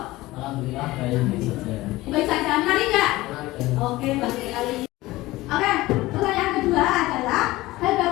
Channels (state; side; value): quieter; right; 18.6 dB